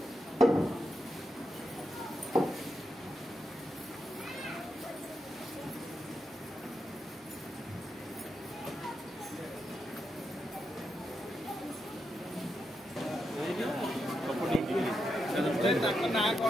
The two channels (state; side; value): normal; both; correlation 0.85